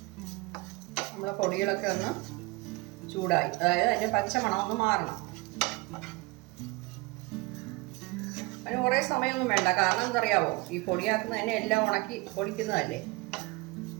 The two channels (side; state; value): left; quieter; 24.1 dB